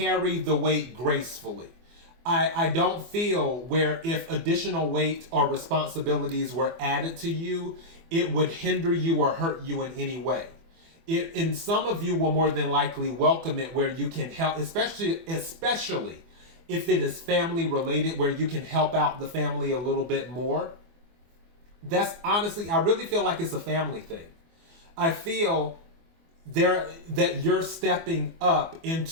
the weight gracefully. I don't feel where if additional weight or responsibilities were added to you, it would hinder you or hurt you in any way. And some of you will more than likely welcome it where you can help, especially if it is family related, where you can help out the family a little bit more. That's honestly, I really feel like it's a family thing. I feel that you're stepping up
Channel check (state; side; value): late; left; 24 ms